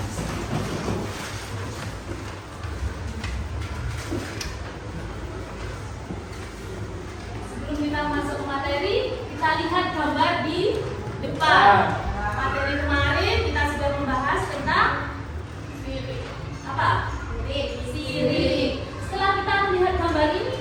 Sebelum kita masuk ke materi, kita lihat gambar di depan. Materi kemarin kita sudah membahas tentang apa? Sirip. Setelah kita melihat gambar ini,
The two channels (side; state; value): both; identical; correlation 1.00